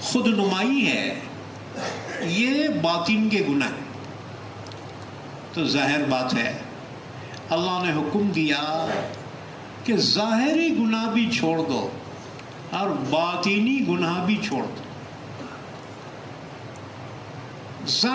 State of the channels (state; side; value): identical; both; correlation 1.00